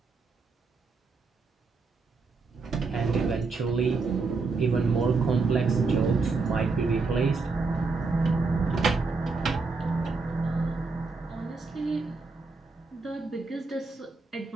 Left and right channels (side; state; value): left; quieter; 4.2 dB